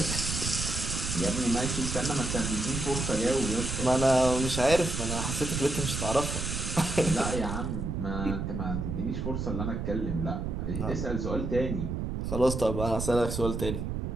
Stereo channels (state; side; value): noise; right; rumble, 3 dB below the sound